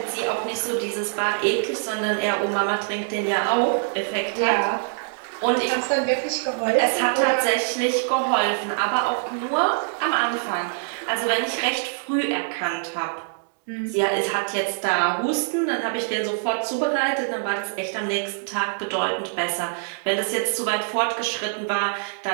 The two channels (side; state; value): left; silent; digital silence